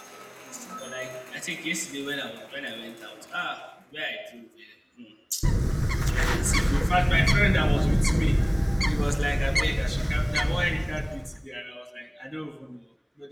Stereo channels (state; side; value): identical; both; correlation 1.00